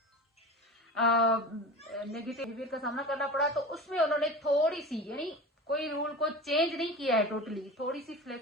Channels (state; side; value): normal; both; correlation 0.32